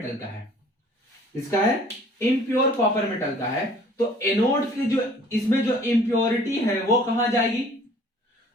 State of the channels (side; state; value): both; normal; correlation 0.53